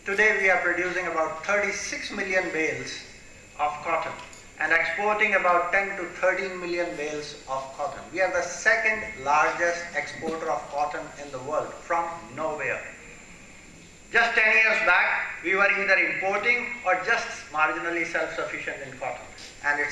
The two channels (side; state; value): both; identical; correlation 1.00